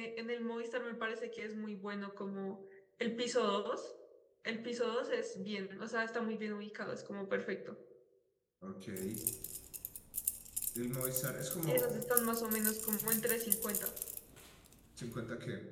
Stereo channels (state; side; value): identical; both; correlation 1.00